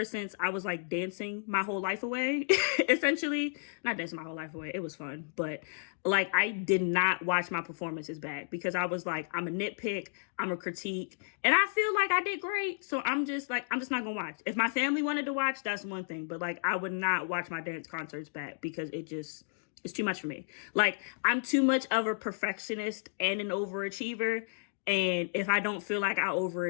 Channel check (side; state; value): right; silent; digital silence